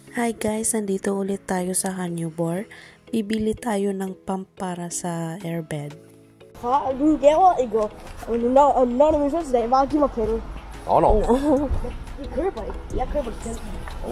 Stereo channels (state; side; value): identical; both; correlation 1.00